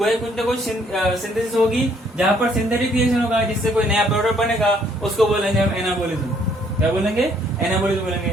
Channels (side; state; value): both; normal; correlation 0.65